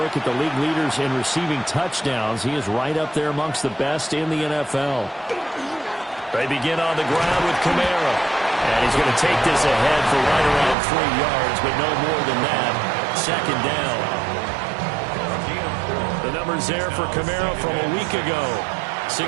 at the league leaders in receiving touchdowns, he is right up there amongst the best in the NFL. They begin on the ground with Kamara. And he's going to take this ahead for right around 3 yards, but no more than that. 2nd down. The numbers there for Kamara from a week ago.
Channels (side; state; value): left; drops out; at 10.8 s